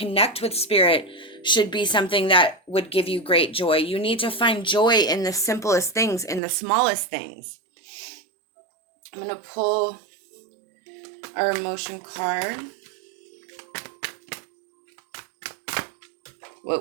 with spirit should be something that would give you great joy. You need to find joy in the simplest things, in the smallest things. I'm going to pull our emotion card.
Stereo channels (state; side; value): drops out; left; at 6.4 s